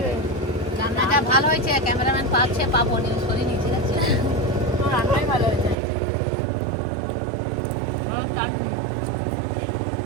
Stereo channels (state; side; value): drops out; left; at 5.8 s